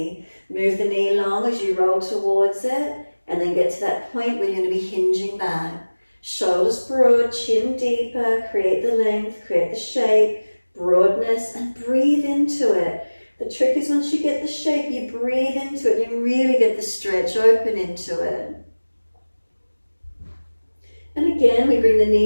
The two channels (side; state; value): both; inverted; correlation -1.00